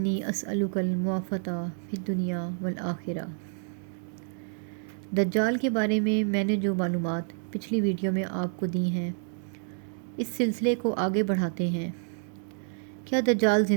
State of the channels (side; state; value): left; silent; 59 dB below the other